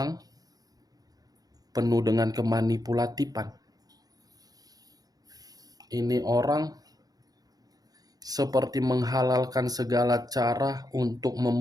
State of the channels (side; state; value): left; late; 0.18 ms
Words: penuh dengan kemanipulatifan. Ini orang seperti menghalalkan segala cara untuk